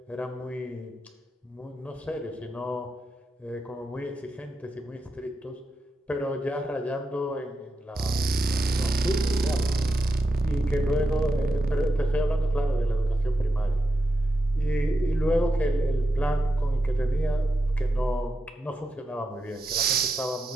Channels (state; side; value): normal; both; correlation 0.87